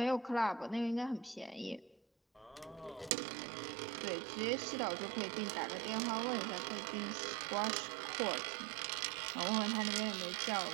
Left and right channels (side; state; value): left; drops out; at 3.1 s